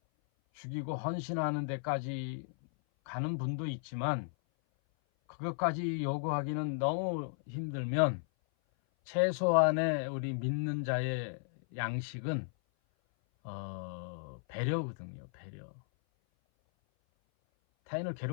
죽이고 헌신하는 데까지 가는 분도 있지만 그것까지 요구하기는 너무 힘들면 최소한의 우리 믿는 자의 양식은 배려거든요. 배려. 타인을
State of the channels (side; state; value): right; silent; 54 dB below the other